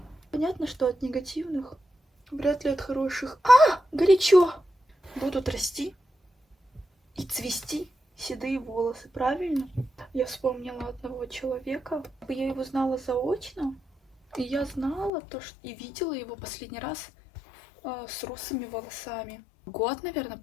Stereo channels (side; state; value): right; drops out; at 15.1 s